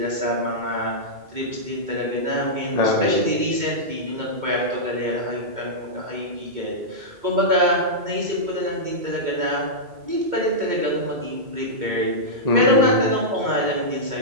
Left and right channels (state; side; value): late; left; 2.2 ms